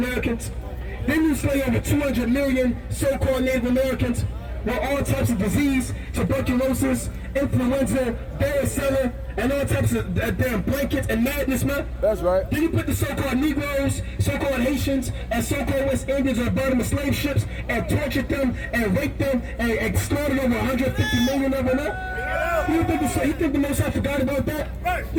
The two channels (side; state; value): both; identical; correlation 1.00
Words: Then you slay over 200 million so-called Native Americans with all types of disease, tuberculosis, influenza, varicella, and all types of damn blankets and madness, man. That's right. Then you put the so-called Negroes, so-called Haitians, and so-called West Indians on the bottom of slave ships and tortured them and raped them and slaughtered over 150 million of them, man. You think the Most High forgot about that?